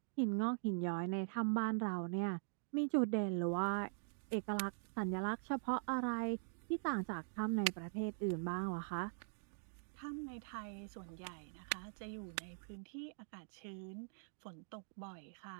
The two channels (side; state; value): left; silent; digital silence